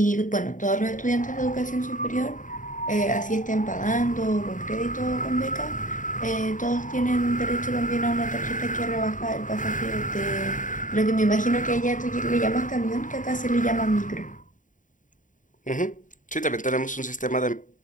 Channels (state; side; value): late; right; 0.38 ms